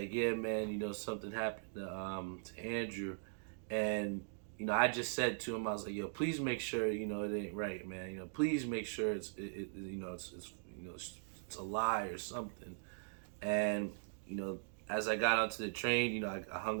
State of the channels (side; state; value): left; silent; digital silence